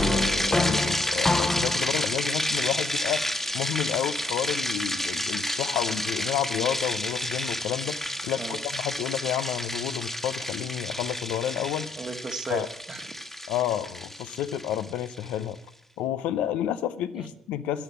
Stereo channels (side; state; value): right; quieter; 3.8 dB